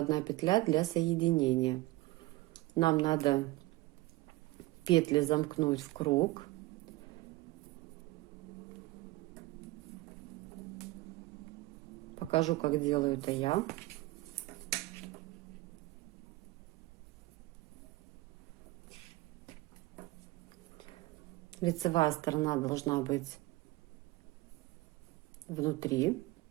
петля для соединения. Нам надо петли замкнуть в круг. Покажу, как делаю это я. Лицевая сторона должна быть внутри.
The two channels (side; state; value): left; quieter; 19.7 dB